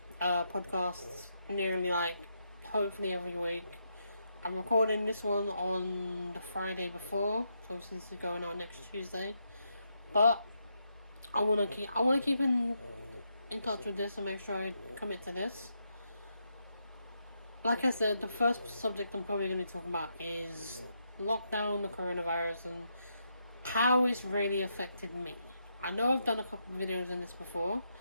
podcasts nearly hopefully every week. I'm recording this one on the Friday before, so obviously this is going out next Tuesday. But I wanna keep in touch with this and make sure I commit to this. Like I said, the first subject I'm probably going to talk about is lockdown, the coronavirus, and how it's really affected me. I know I've done a couple of videos in this before,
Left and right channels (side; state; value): both; inverted; correlation -0.81